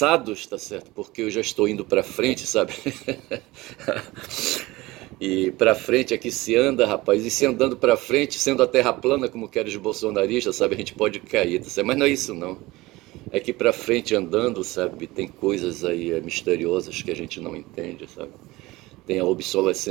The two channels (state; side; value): quieter; left; 20.0 dB